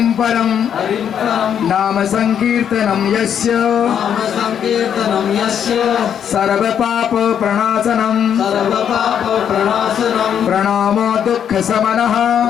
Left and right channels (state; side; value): quieter; right; 8.7 dB